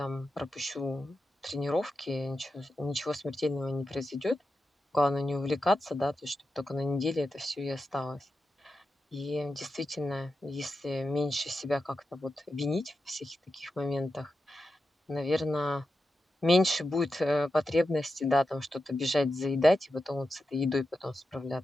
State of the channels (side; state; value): both; normal; correlation 0.89